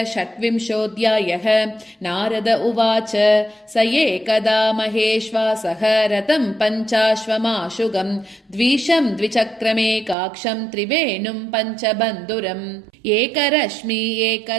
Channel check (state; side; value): drops out; left; at 10.2 s